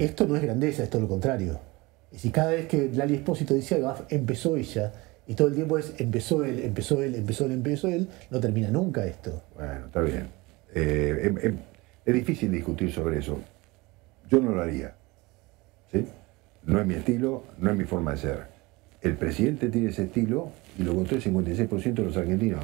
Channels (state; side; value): quieter; left; 23.2 dB